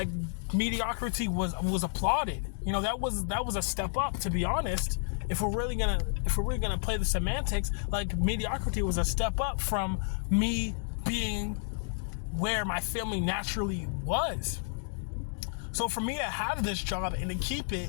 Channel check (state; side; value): silent; right; digital silence